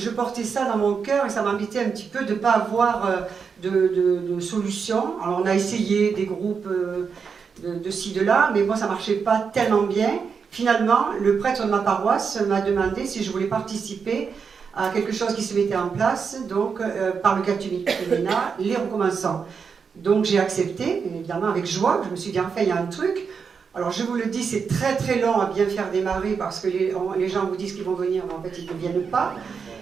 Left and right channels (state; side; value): quieter; left; 5.9 dB